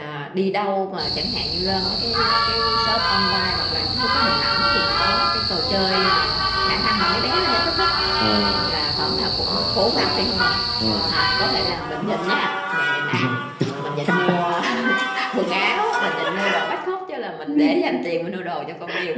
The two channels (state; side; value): identical; both; correlation 1.00